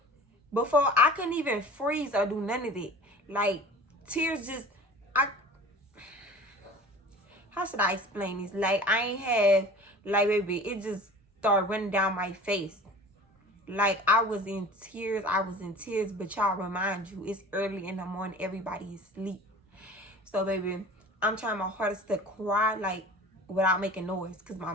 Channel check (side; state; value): both; normal; correlation 0.41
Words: before I couldn't even freeze or do none of it. Like, tears just, how should I explain this? Like, I ain't have, like, baby, it just started running down my face. Like, I was in tears, but y'all, remind you, it's early in the morning, everybody is asleep. So, baby, I'm trying my hardest to cry, like, without making noise. Because my